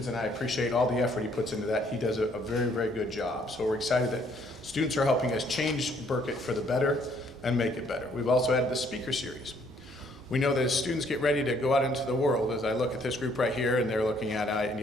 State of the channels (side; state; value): both; normal; correlation 0.65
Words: and I appreciate all the effort he puts into that. He does a very, very good job. So we're excited that students are helping us change Burket for the better and make it better. We've also added the speaker series. We know that as students get ready to go out into the world, as I look at this group right here, and they're looking at, I